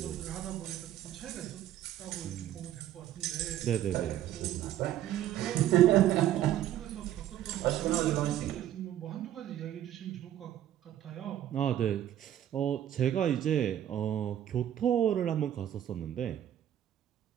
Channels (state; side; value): quieter; left; 11.8 dB